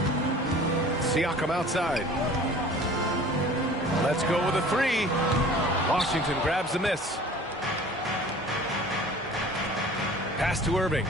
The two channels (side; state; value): both; normal; correlation 0.46